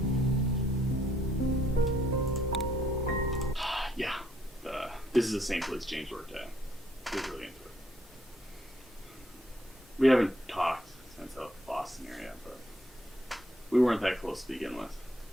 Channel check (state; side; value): normal; both; correlation 0.69